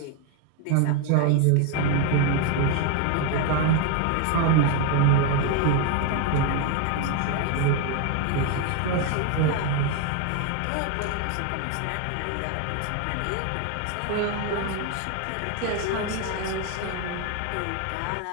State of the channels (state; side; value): different; both; correlation 0.01